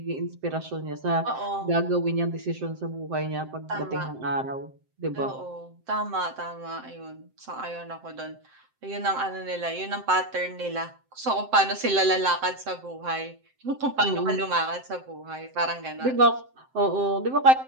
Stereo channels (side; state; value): left; late; 7.7 ms